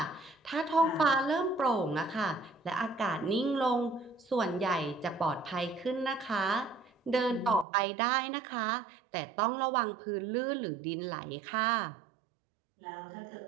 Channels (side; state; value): left; drops out; at 7.7 s